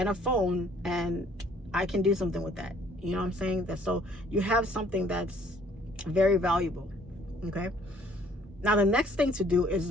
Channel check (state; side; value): normal; both; correlation 0.59